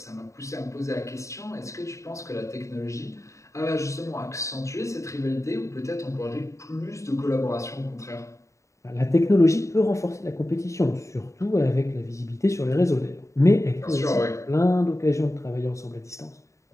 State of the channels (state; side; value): late; right; 0.15 ms